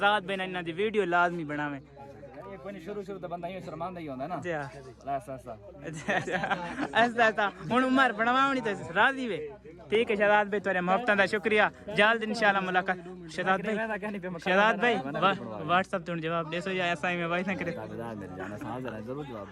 भाई इना दी वीडियो लाजमी बनावे कोई शुरू तो बंदा ही शर्मांदा ही होंदा ना जी ऐसा हुन उमर बनवावनी तो राजी वे ठीक है शहजाद भाई तेरे मोहब्बत दा शुक्रिया जल्द इंशाल्लाह मुलाकात शहजाद भाई व्हाट्सएप तो जवाब देसो या ऐसा ही में वाइस ना करे जरूर जवाब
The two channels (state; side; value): identical; both; correlation 1.00